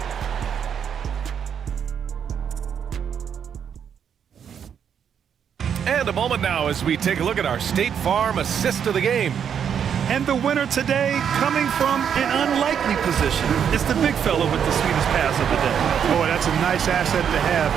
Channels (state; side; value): quieter; left; 8.1 dB